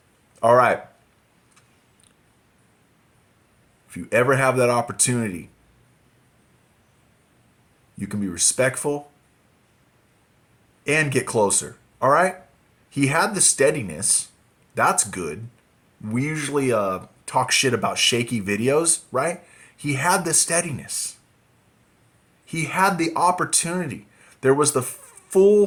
All right. If you ever have that opportunity, you can be respectful and get closer. All right? He had the steadiness. That's good. We usually talk shit about shaky videos, right? He had the steadiness. He had the opportunity. There was the full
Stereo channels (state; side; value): identical; both; correlation 1.00